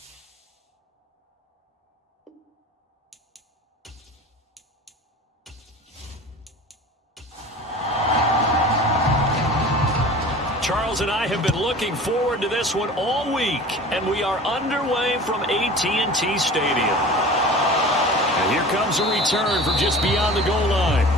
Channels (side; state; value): both; normal; correlation 0.39